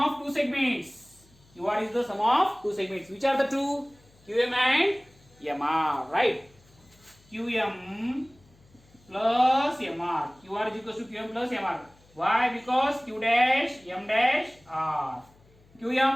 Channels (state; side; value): noise; left; hum, 29 dB below the sound